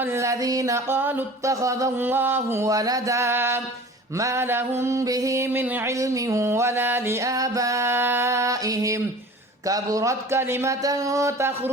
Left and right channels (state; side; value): normal; both; correlation 0.42